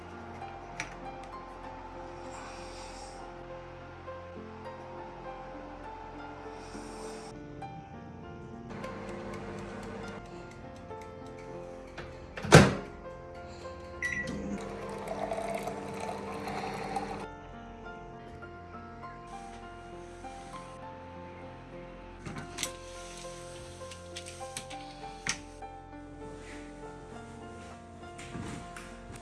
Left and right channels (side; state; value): both; identical; correlation 1.00